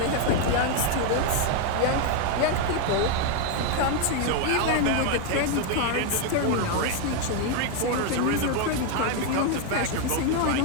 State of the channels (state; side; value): different; both; correlation 0.01